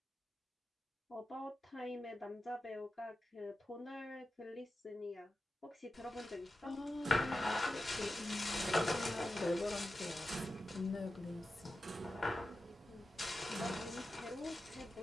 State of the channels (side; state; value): both; normal; correlation 0.92